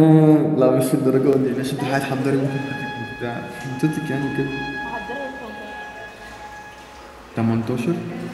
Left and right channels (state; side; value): identical; both; correlation 1.00